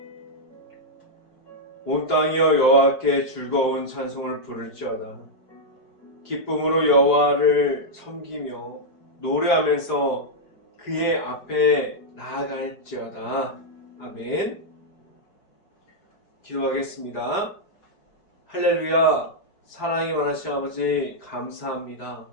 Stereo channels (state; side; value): late; right; 5.0 ms